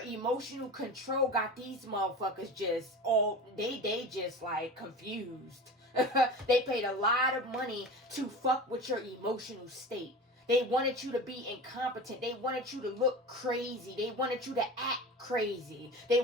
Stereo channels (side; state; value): both; normal; correlation 0.32